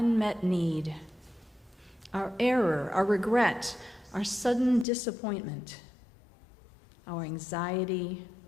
need, our error, our regret, our sudden disappointment, our anxiety,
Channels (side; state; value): right; drops out; at 4.9 s